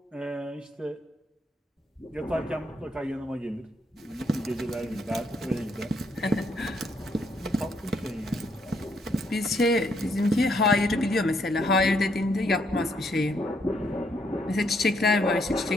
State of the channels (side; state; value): both; normal; correlation 0.72